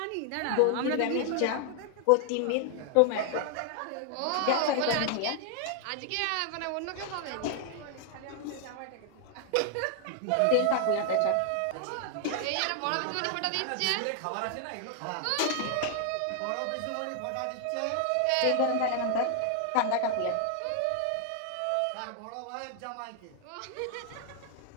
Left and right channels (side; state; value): both; different; correlation 0.00